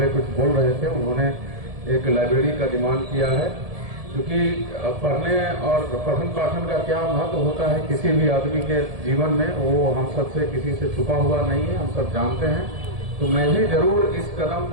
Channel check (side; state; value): left; late; 1.7 ms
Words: कुछ बोल रहे थे, उन्होंने एक लाइब्रेरी का डिमांड किया है, क्योंकि पढ़ने और पठन पाठन का क्या महत्व होता है किसी भी आदमी के जीवन में, वो हम सबसे किसी से छुपा हुआ नहीं है, हम सब जानते हैं। तो मैं भी जरूर इस कदम